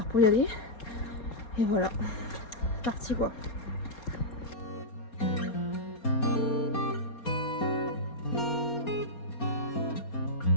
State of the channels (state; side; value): late; right; 4.2 ms